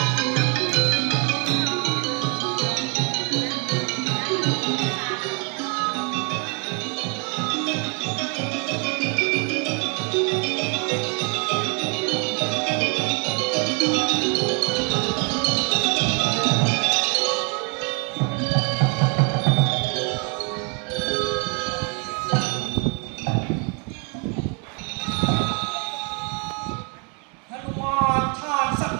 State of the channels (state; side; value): quieter; left; 36.1 dB